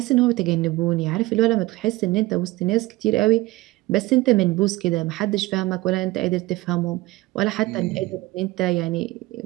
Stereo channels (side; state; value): left; quieter; 19.4 dB